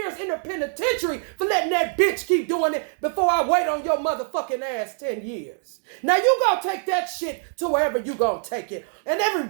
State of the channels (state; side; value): silent; left; 55 dB below the other